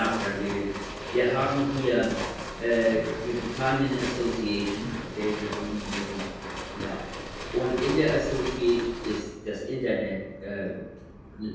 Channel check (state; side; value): identical; both; correlation 1.00